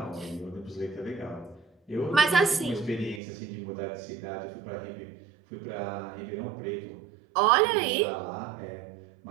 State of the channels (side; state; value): left; drops out; at 3.2 s